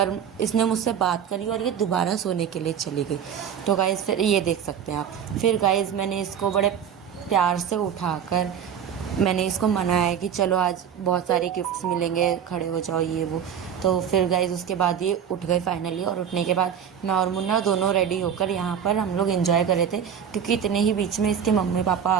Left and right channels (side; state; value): left; quieter; 8.4 dB